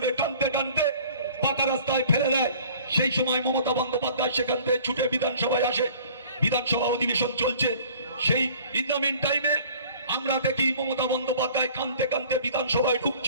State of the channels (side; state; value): both; inverted; correlation -0.50